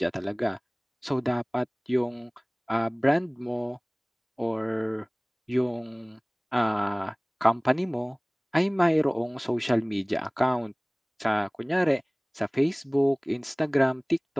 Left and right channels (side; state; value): both; identical; correlation 1.00